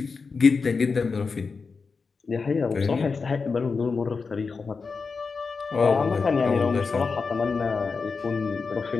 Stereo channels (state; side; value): quieter; right; 4.8 dB